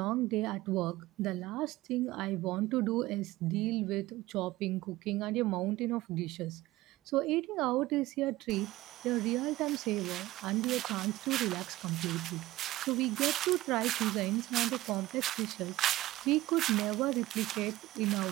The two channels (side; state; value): left; quieter; 17.3 dB